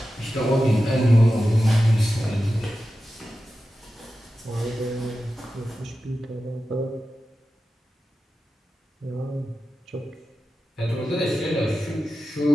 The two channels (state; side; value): normal; both; correlation 0.93